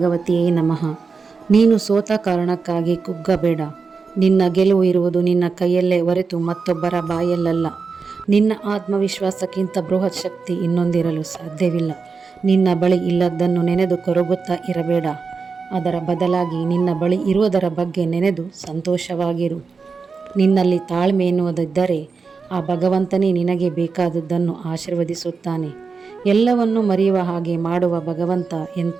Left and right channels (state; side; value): quieter; left; 4.9 dB